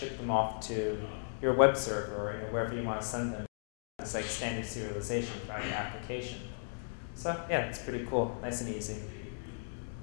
them off to your web server or wherever you want to send them. It's standard serialization throughout your application. So yeah, it's pretty cool, nice and easy.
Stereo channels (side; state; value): right; silent; digital silence